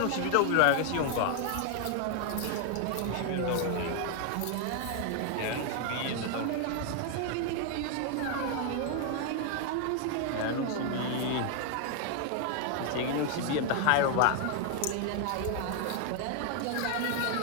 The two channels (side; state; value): both; different; correlation 0.00